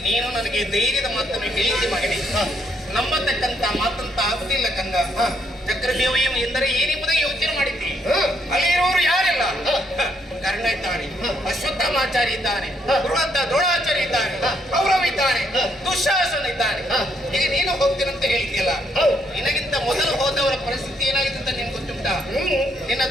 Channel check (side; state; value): both; normal; correlation 0.73